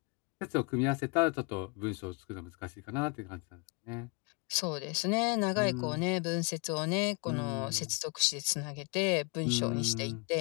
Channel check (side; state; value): right; quieter; 33.3 dB